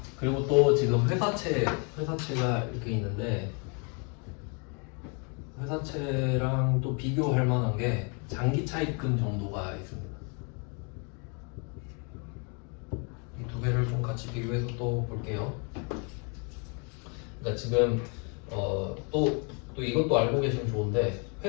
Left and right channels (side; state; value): right; quieter; 35.6 dB